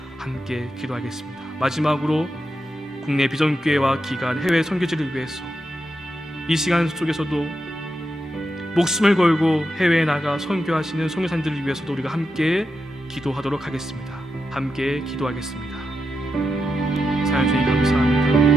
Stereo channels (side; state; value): both; normal; correlation 0.86